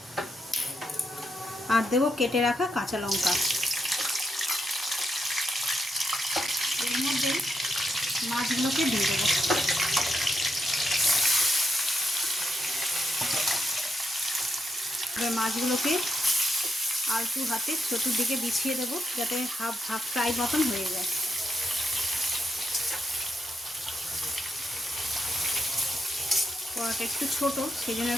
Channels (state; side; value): normal; both; correlation 0.82